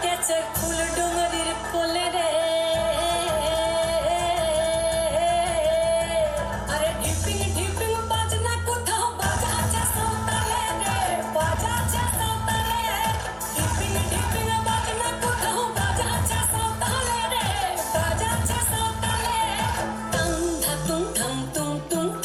আছে ফুল ডুঙরির কোলে রে আরে ঢিপিং ঢিপিং বাজনা কোথাও বাজাচ্ছে সাঁওতালে রে বাজাচ্ছে সাঁওতালে ঢিপিং ঢিপিং বাজনা কোথাও বাজাচ্ছে সাঁওতালে রে বাজাচ্ছে সাঁওতালে টাং ধাতুং ঠাং তুং তুং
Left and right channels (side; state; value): both; identical; correlation 1.00